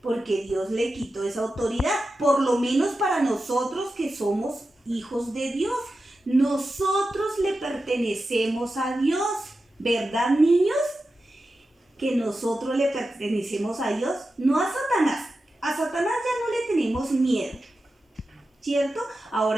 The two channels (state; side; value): normal; both; correlation 0.91